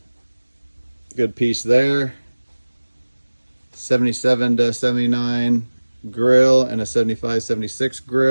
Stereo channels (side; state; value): both; inverted; correlation -1.00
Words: piece there. 77 to 79 grill and a 75, 76